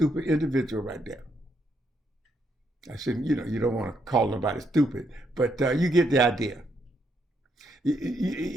individual right there. I shouldn't, you don't want to call nobody stupid, but you get the idea.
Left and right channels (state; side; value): normal; both; correlation 0.76